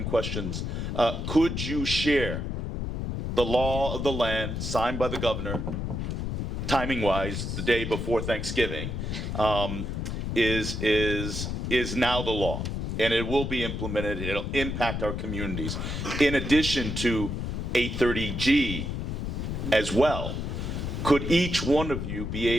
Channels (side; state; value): left; noise; rumble, 3 dB below the sound